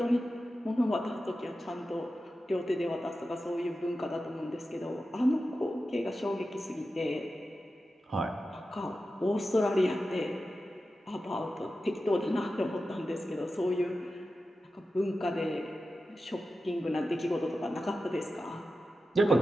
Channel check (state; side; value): normal; both; correlation 0.92